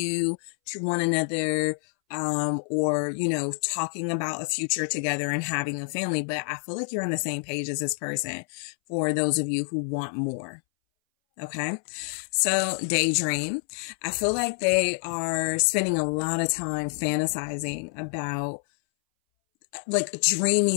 to one another, or, you know, talking about a future together and having a family. But I feel like you're on the same page as this person for those of you who want more. Okay. So daydream, I feel like they are spending a lot of time fantasizing about like dreamy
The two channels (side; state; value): right; silent; 60 dB below the other